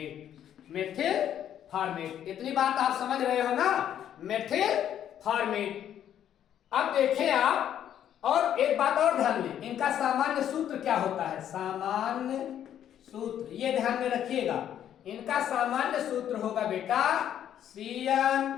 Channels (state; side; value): quieter; right; 10.3 dB